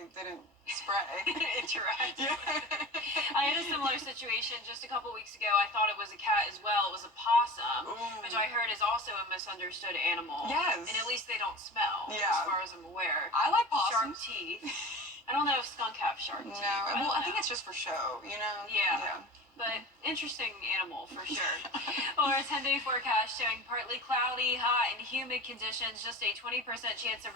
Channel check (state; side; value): normal; both; correlation 0.34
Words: didn't spray. Interact. Yeah. I had a similar situation just a couple weeks ago. I thought it was a cat as well. It was a possum, which I heard is also a misunderstood animal. Yes. And at least they don't smell, Yeah. as far as I'm aware. I like Sharp possums. teeth. I don't know if skunk have sharp teeth. No. I Well, I don't think know. it's just for show, you know? Yeah. But interesting animal for sure. Well, our 10-day forecast showing partly cloudy, hot, and humid conditions. Just a 20% chance of